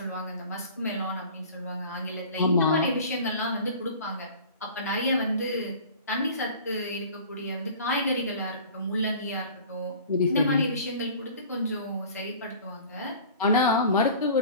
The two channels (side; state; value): both; inverted; correlation -0.43